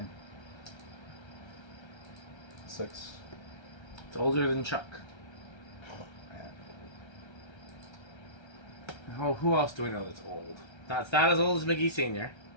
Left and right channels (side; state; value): right; late; 1.3 ms